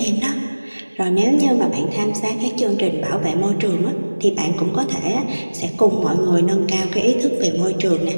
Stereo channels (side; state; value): both; inverted; correlation -1.00